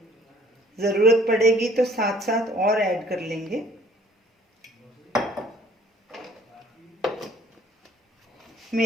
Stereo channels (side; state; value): both; normal; correlation 0.55